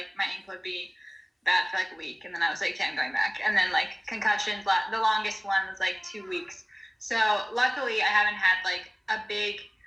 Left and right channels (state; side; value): identical; both; correlation 1.00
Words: my ankle would be bad for like a week, and then I was like, okay, I'm going back. And then like concussions, the longest one was like 2 weeks. So luckily I haven't had like a big